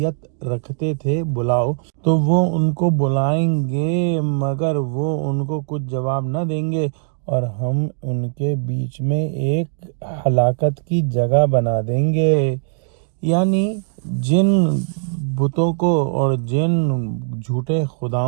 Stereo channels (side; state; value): left; silent; digital silence